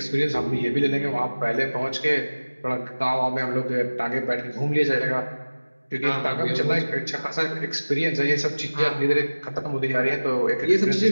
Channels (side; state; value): both; inverted; correlation -1.00